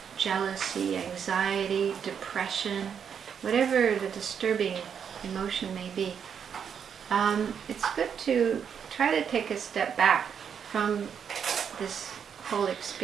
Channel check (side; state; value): left; quieter; 7.5 dB